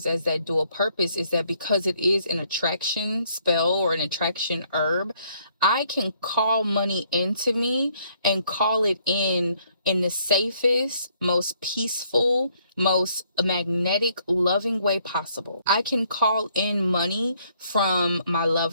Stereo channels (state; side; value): inverted; both; correlation -0.67